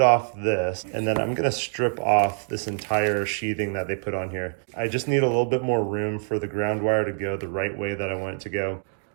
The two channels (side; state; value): left; silent; digital silence